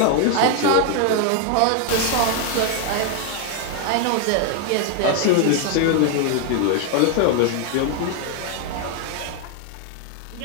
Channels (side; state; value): both; different; correlation 0.00